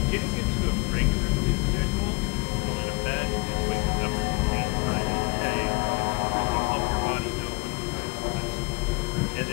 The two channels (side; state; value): right; quieter; 27.4 dB